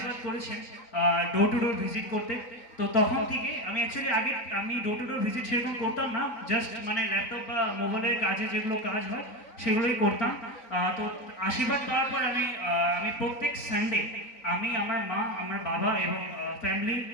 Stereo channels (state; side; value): late; right; 4.0 ms